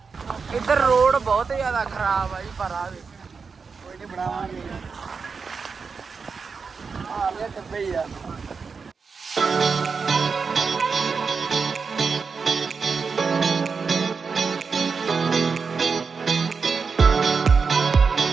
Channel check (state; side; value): quieter; left; 5.2 dB